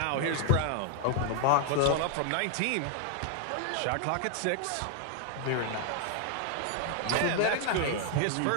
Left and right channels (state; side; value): different; both; correlation 0.00